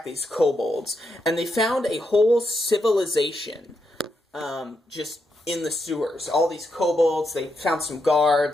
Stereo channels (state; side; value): normal; both; correlation 0.82